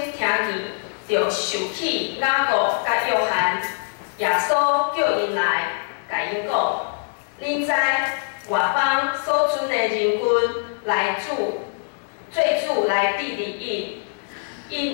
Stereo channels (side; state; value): right; silent; digital silence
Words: 听见，就受起雅各甲约翰。耶稣叫因来，甲因讲：恁知外邦所存的人群来做主来治理